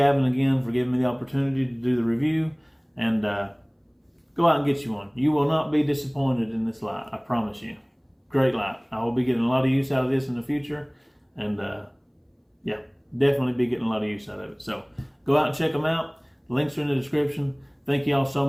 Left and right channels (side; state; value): both; identical; correlation 1.00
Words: again for giving me the opportunity to do the review. And go out and get you one. You will not be disappointed in this light, I promise you. Great light. I will be getting a lot of use out of this in the future. And yeah, definitely be getting a lot of use out of it. So go out and check them out. Links are in the description. Thank you all